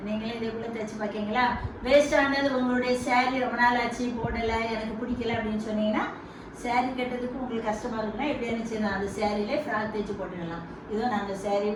நீங்களே இதே போல் தைச்சி பார்க்கிங்களா? வேஸ்ட் ஆனது உங்களுடைய சேரீ ரொம்ப நாள் ஆச்சு போடலை, எனக்கு பிடிக்கல அப்படின்னு சொன்னீங்கன்னா, சேரீ கட்டுறதுக்கு உங்களுக்கு கஷ்டமாக இருக்குன்னா எப்படி இருந்துச்சு, அந்த சேரீலே ஃப்ராக் தைச்சி போட்டுடலாம். இதுவும் நாங்கள் சேரீ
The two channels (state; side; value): identical; both; correlation 1.00